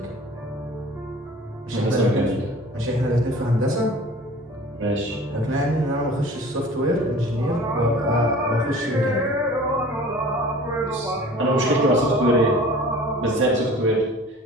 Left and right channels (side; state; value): both; normal; correlation 0.44